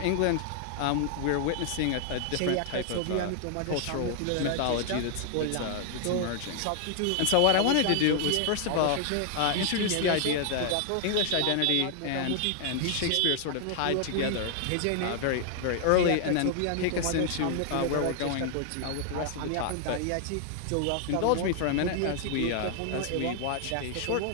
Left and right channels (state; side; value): different; both; correlation 0.00